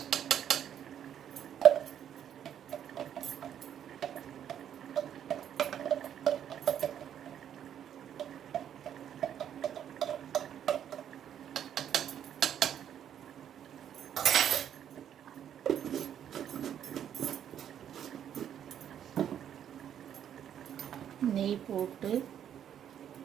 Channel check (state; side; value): quieter; left; 9.6 dB